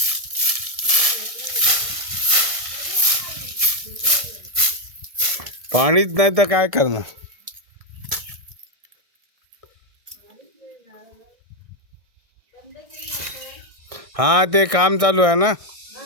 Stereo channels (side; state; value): left; late; 1.7 ms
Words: पाणीच नाही तर काय करणार. हा, ते काम चालू आहे ना.